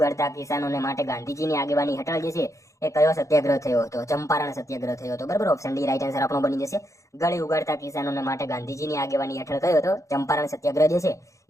કિસાનોને માટે ગાંધીજીની આગેવાની હેઠળ જે છે એ કયો સત્યાગ્રહ થયો હતો? ચંપારણ સત્યાગ્રહ થયો હતો. બરાબર, ઓપ્શન ડી રાઈટ આન્સર આપણો બની જશે. ગળી ઉગાડતા કિસાનોને માટે ગાંધીજીની આગેવાની હેઠળ કયો હતો? ચંપારણ સત્યાગ્રહ જે છે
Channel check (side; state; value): right; late; 0.15 ms